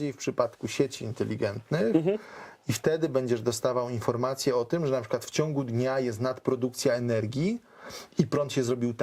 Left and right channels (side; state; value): both; identical; correlation 1.00